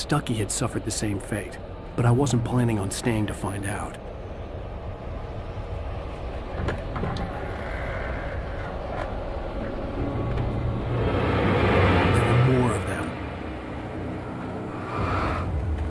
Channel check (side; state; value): both; identical; correlation 1.00